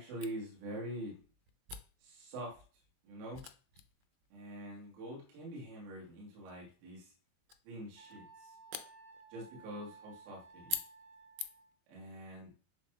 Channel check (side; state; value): left; late; 23 ms